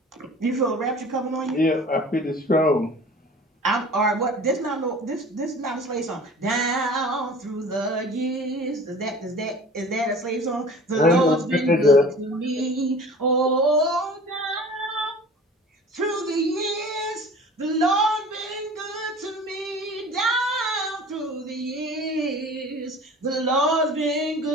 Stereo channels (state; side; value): normal; both; correlation 0.43